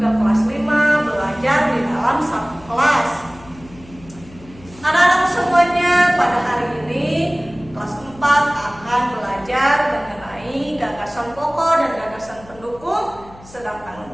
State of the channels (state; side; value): noise; left; hum, 22 dB below the sound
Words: kelas 5, belajar di dalam satu kelas. Anak-anak semuanya, pada hari ini kelas 4 akan belajar mengenai gagasan pokok dan gagasan pendukung, sedangkan